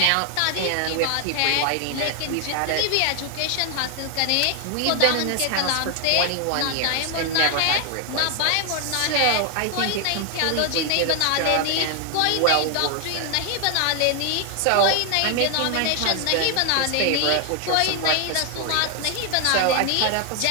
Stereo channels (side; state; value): both; different; correlation 0.00